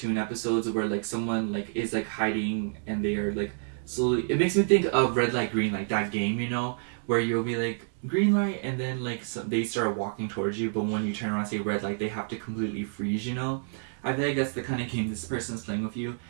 episodes where, like, someone, like, is, like, hiding and they are, like, slowly... It makes me think of Red Light, Green Light, that game, you know? Where you'll be, like, green light, and then, like, they start walking towards you, but when you turn around and say red light, they have to completely freeze, you know? I feel like that's the kind of game this person is playing with you,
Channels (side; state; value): left; silent; digital silence